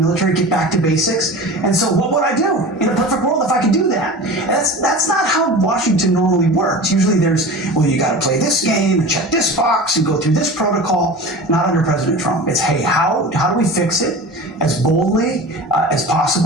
get back to basics. And so what would I do in a perfect world if I could do that? That's not how Washington normally works. Usually there's, well, you got to play this game and check this box and go through this protocol. Not under President Trump. It's, hey, how do we fix it as boldly as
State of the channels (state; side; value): normal; both; correlation 0.34